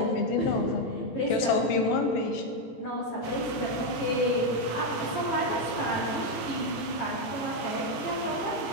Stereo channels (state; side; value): late; right; 18 ms